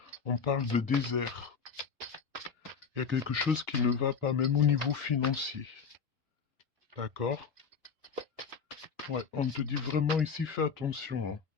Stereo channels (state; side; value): quieter; right; 5.9 dB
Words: On parle de désert. Il y a quelque chose qui ne va pas, même au niveau financier. D'accord? Ouais, on te dit vraiment ici, fais attention, hein.